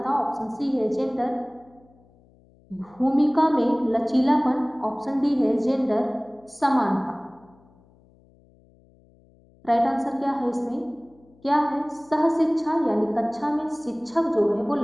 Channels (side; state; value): left; noise; hum, 30 dB below the sound